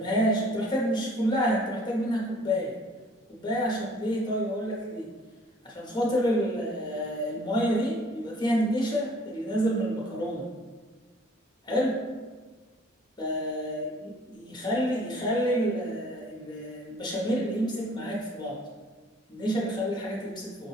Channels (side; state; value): both; normal; correlation 0.55